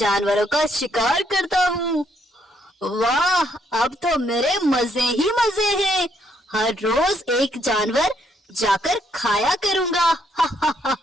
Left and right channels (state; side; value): normal; both; correlation 0.72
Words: का शिकार करता हूँ। वाह, अब तो मेरे मजे ही मजे हैं। हर रोज एक जानवर जाकर खाया करूँगा।